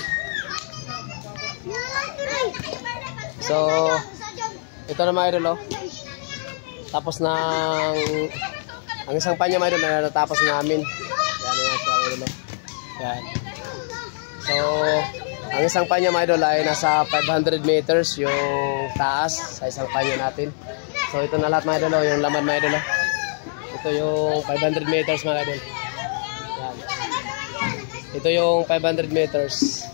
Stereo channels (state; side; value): silent; right; 63 dB below the other